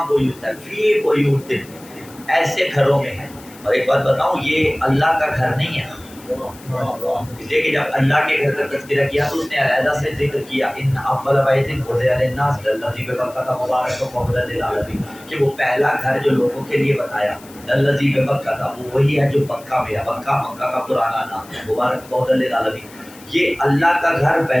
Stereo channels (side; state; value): left; noise; hiss, 22 dB below the sound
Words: بیوت ہے، فی بیوت، ایسے گھروں میں ہے۔ اور ایک بات بتاؤں، یہ اللہ کا گھر نہیں ہے، اس لیے کہ جب اللہ کے گھر کا تذکرہ کیا تو اس نے علیحدہ سے ذکر کیا ان اول بیت وضع للناس الذی ببکۃ مبارک وہدی للعالمین، کہ وہ پہلا گھر جو لوگوں کے لیے بنایا الذی ببکۃ، وہ وہی ہے جو مکہ میں ہے۔ مکہ کا پرانا نام ہے، مبارک وہدی للعالمین۔ یہ اللہ کا گھر